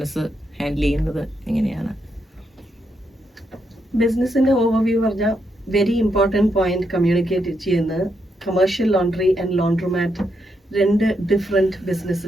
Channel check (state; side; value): normal; both; correlation 0.80